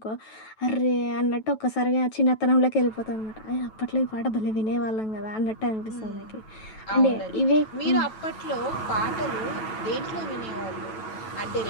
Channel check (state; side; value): late; right; 9.1 ms